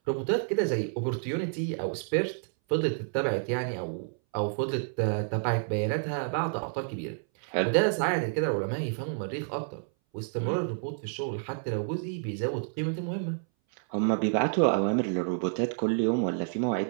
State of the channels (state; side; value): silent; left; 58 dB below the other